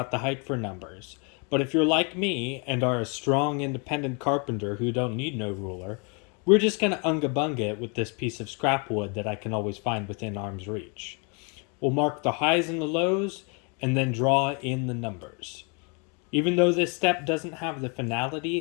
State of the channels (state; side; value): quieter; right; 34.6 dB